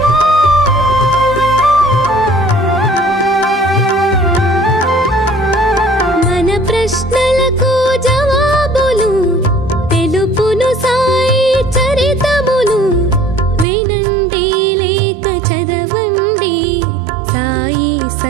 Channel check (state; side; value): drops out; left; at 13.7 s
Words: మన ప్రశ్నలకు జవాబులు తెలుపును సాయి చరితములు. వినండి లేక చదవండి, సాయి